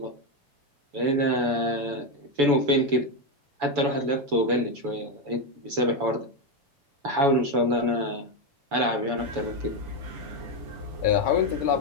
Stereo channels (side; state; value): left; late; 7.0 ms